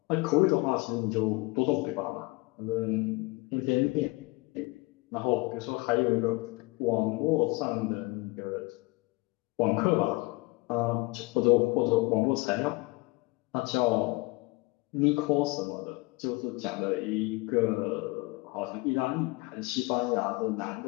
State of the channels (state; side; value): quieter; right; 24.4 dB